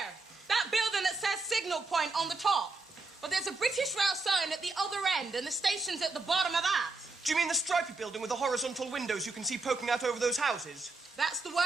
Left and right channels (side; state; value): left; quieter; 3.6 dB